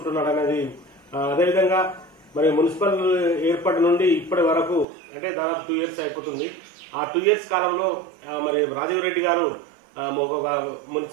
అనేది, అదేవిధంగా మరి మున్సిపల్ ఏర్పాటు నుండి ఇప్పటి వరకు అంటే దాదాపు 2 years అయిపోతుంది. ఆ 2 years కాలంలో మరి రాజీవ్ రెడ్డి గారు ఒక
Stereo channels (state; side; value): drops out; left; at 4.9 s